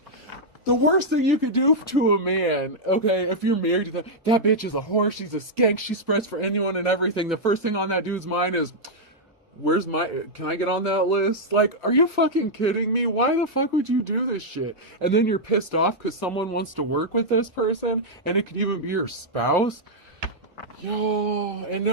The worst thing you could do to a man, okay, if you're married to that bitch is a whore, she's a skank, she spreads for anyone and everything. The first thing on that dude's mind is, can I get on that list? Like, are you fucking kidding me? Why the fuck would you do this shit? And then you're pissed off because someone wants to work with this person, and it could even be your spouse. Yo, and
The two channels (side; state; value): right; late; 1.6 ms